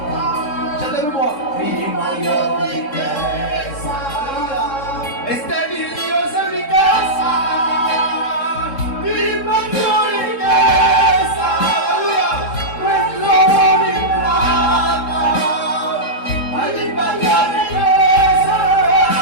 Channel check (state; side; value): late; right; 3.7 ms